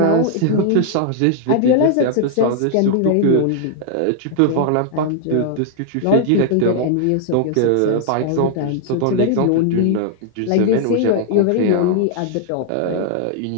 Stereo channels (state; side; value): different; both; correlation -0.01